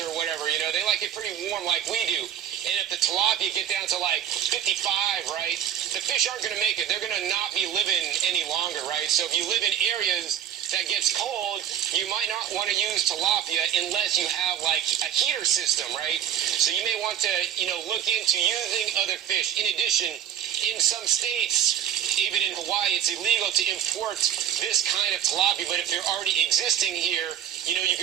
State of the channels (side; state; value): left; quieter; 10.0 dB